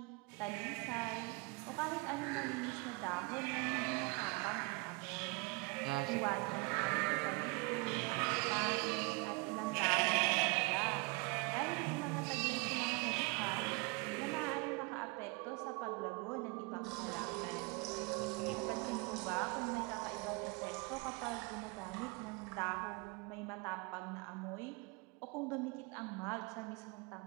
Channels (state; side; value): quieter; left; 28.2 dB